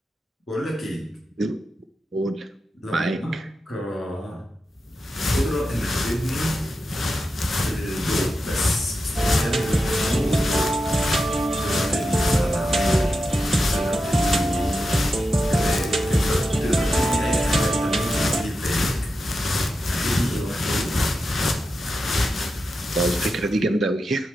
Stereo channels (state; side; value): normal; both; correlation 0.89